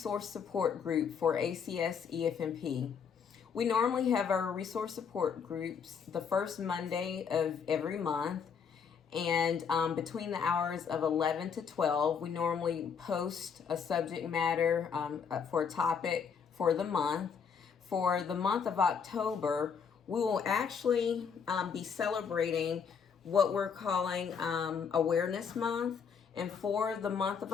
support group for ACS EFMP. We normally have our resource support groups the first Monday of every month, and between the hours of 11 to 12, we normally post a subject matter for a topic for the month. For the month of October, we will actually be celebrating what we're calling Awareness Month. And for the month of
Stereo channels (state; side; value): quieter; right; 6.6 dB